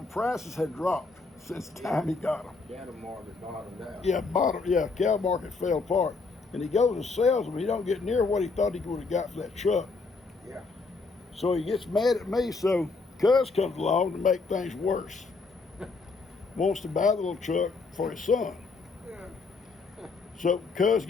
prices had dropped since the time he got them. Cattle market bottomed out. Cow market fell apart. And he goes and sells them. He don't get near what he thought he would have got for that truck. Yeah. So he gets mad at me, so Cuz comes along to make things worse. Wants to buy the little truck for his son. Yeah. So Cuz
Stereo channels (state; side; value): quieter; right; 4.1 dB